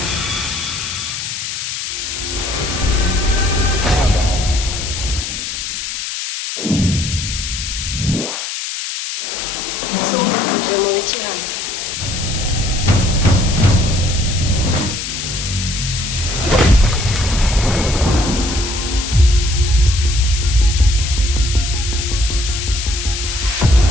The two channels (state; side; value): noise; left; hiss, 5 dB below the sound